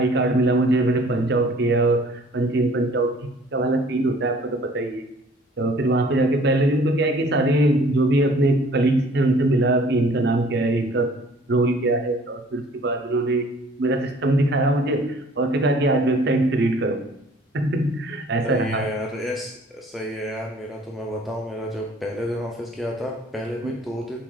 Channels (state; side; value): normal; both; correlation 0.54